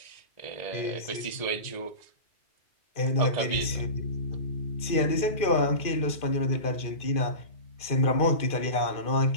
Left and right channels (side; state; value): right; late; 2.4 ms